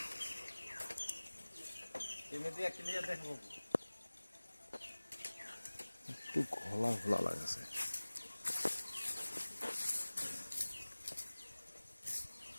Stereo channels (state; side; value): inverted; both; correlation -1.00